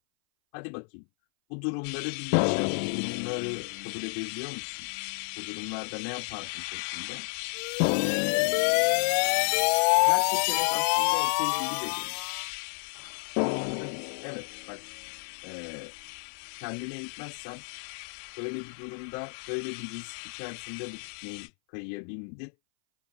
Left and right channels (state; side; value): silent; right; 58 dB below the other